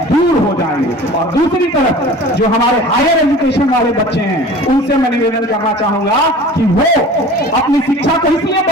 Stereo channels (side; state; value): both; normal; correlation 0.41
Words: दूर हो जाएंगे। और दूसरी तरफ जो हमारे हायर एजुकेशन वाले बच्चे हैं, उनसे मैं निवेदन करना चाहूंगा कि वो अपनी शिक्षा को इसलिए